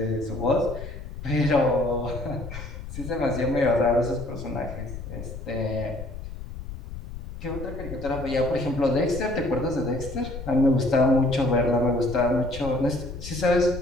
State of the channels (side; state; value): left; noise; rumble, 10 dB below the sound